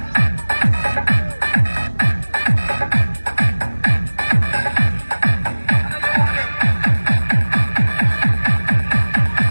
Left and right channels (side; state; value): both; inverted; correlation -1.00